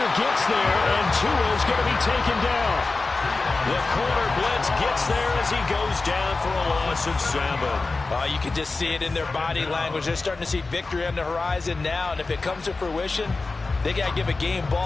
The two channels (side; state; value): right; quieter; 3.7 dB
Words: gets there, and Tua's going to be taken down. The corner blitz gets there as he goes down for a loss of 7. You can just see it in their body language. They're starting to see victory on the horizon now, and if it comes to fruition, they got to give a game